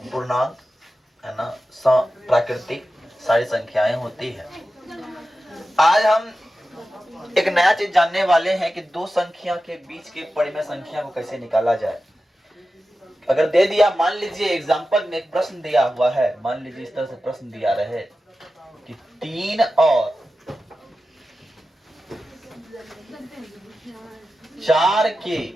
पूर्णांक है ना, प्राकृतिक सारी संख्याएं होती है। आज हम एक नया चीज जानने वाले हैं कि दो संख्या के बीच के परिमेय संख्या को कैसे निकाला जाए। अगर दे दिया, मान लीजिए एग्जांपल में एक प्रश्न दिया हुआ है, मान लीजिए इस तरह से प्रश्न दिया रहे कि 3 और 4 के,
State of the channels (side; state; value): both; normal; correlation 0.93